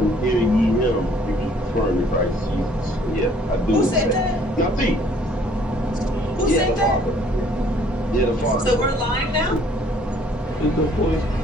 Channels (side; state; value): both; normal; correlation 0.59